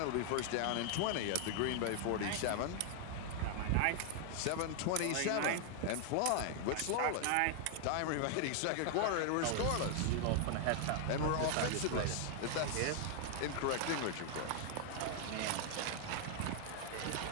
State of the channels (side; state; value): both; different; correlation 0.00